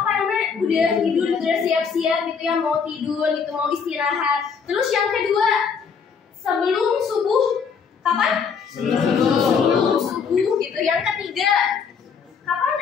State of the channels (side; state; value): right; quieter; 6.1 dB